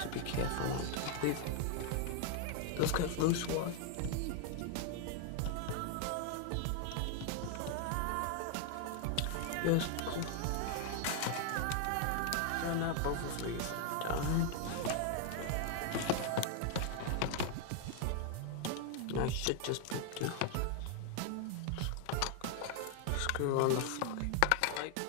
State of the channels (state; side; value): different; both; correlation 0.00